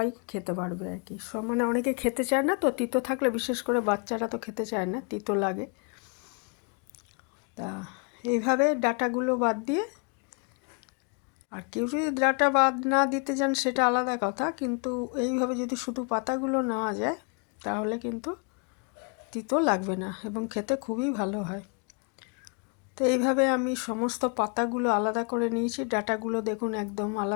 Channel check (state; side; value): quieter; right; 37.0 dB